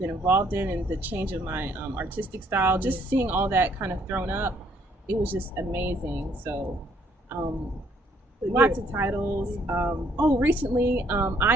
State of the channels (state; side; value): normal; both; correlation 0.66